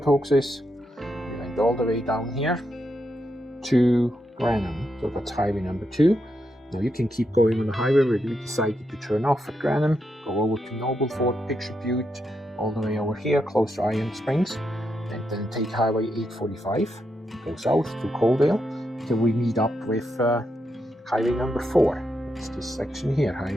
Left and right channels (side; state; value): both; normal; correlation 0.83